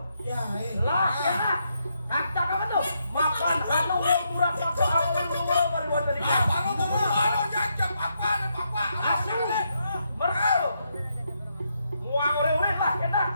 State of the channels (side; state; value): both; inverted; correlation -0.79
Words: Ya, Lah, kena. Kacak apa tuh? Makan anu murah pakai awal dua mariwan taning Asal mereka muang ore-ore lah kena.